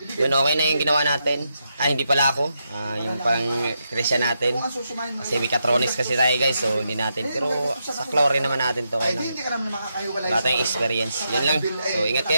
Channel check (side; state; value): both; inverted; correlation -0.83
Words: Yun, okay na yung ginawa natin. Hindi pala ako. Yung pang Christian natin. Kasi Mechatronics kasi tayo guys. So hindi natin. Pero sa chlorine naman natin to. Kaya lang, wala tayong experience. Yun lang. So ingat